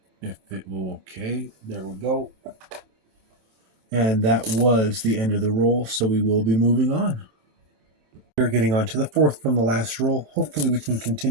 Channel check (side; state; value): left; late; 27 ms